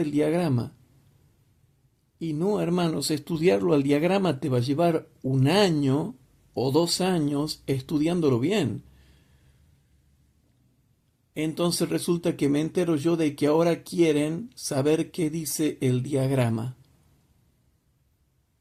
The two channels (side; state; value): both; identical; correlation 1.00